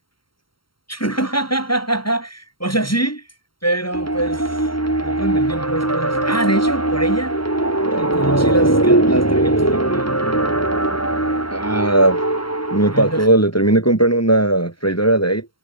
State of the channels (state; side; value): late; right; 0.73 ms